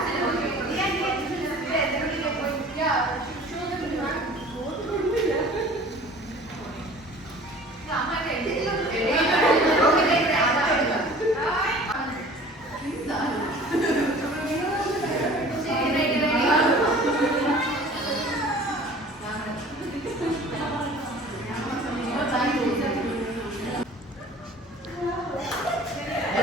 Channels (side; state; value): both; normal; correlation 0.46